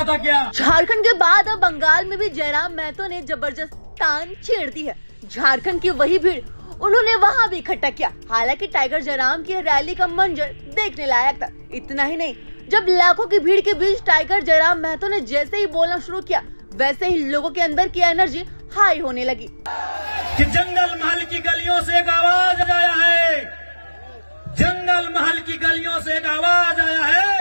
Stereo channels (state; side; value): inverted; both; correlation -1.00